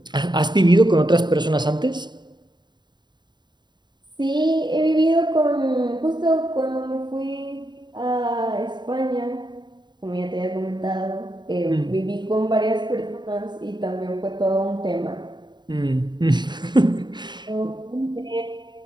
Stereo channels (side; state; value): left; late; 0.21 ms